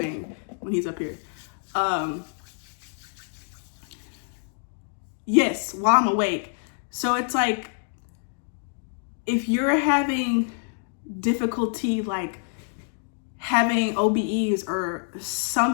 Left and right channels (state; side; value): silent; right; digital silence